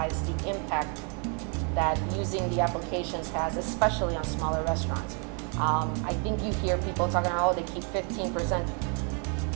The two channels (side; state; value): left; quieter; 38.7 dB